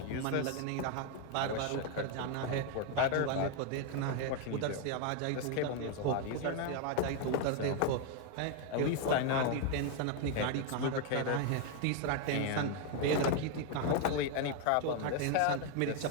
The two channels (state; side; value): different; both; correlation 0.01